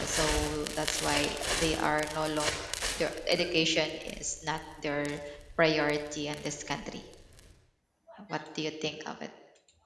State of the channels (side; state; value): both; identical; correlation 1.00